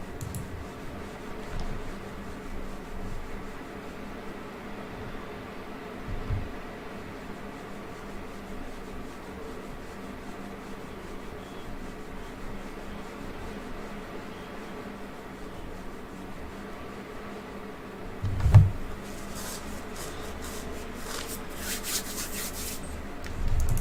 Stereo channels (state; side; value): identical; both; correlation 1.00